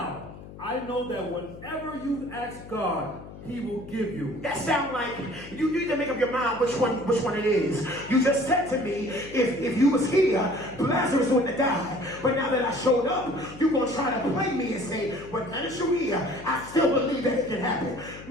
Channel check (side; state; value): left; noise; hum, 15 dB below the sound